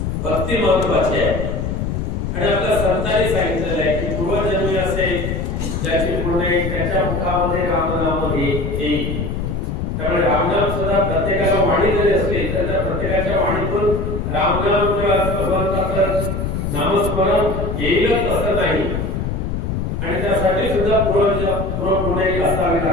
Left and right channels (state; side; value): noise; left; rumble, 2 dB below the sound